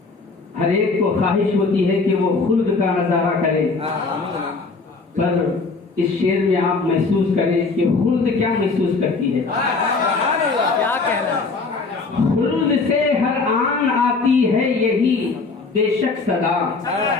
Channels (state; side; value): quieter; right; 4.1 dB